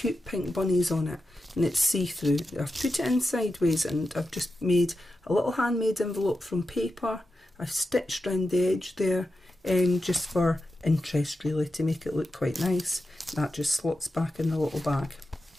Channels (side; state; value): both; normal; correlation 0.90